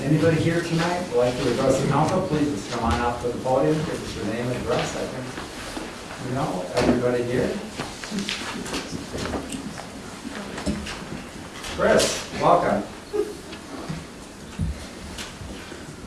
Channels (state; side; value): identical; both; correlation 1.00